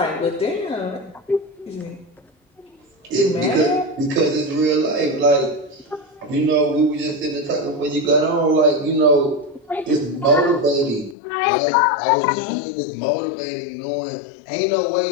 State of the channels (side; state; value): right; drops out; at 11.2 s